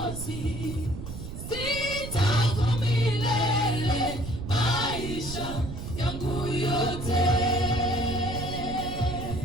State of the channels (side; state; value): right; noise; rumble, 8 dB below the sound